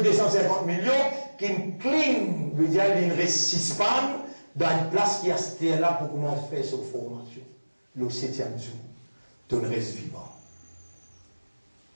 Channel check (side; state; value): both; inverted; correlation -1.00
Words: de 150 millions, qui clean, veut dire qu'il ne reste pas dans une place qui est là pour comment faire cette formation. Le 7e jour, tu restes vivant.